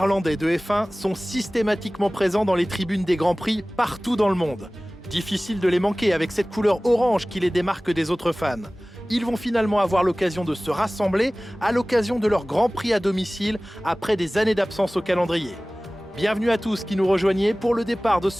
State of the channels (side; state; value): both; normal; correlation 0.98